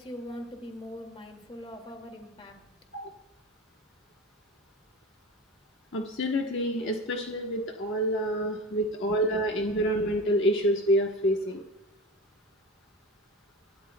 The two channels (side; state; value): both; normal; correlation 0.31